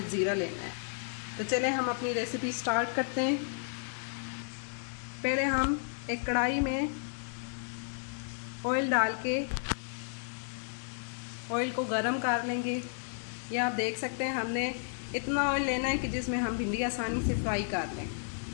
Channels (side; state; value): right; silent; digital silence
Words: ज़ीरा लेना है। तो चलें हम अपनी रेसिपी स्टार्ट करते हैं। पहले हम एक कढ़ाई में ऑयल डाल के ऑयल को गरम कर लेंगे। ये आप देख सकते हैं, हमने इतना ऑयल लेना है कि जिसमें हम भिंडी आसानी से फ्राई कर लें।